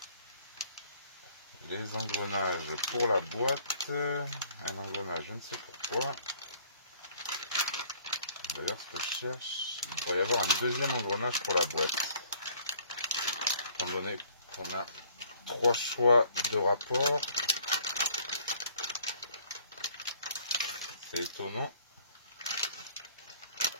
Les engrenages pour la boîte. Un engrenage, je ne sais pourquoi. D'ailleurs, ce que je cherche, il devrait y avoir un deuxième engrenage pour la boîte. Étant donné qu'on a 3 choix de rapport, c'est étonnant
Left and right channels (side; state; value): both; inverted; correlation -0.58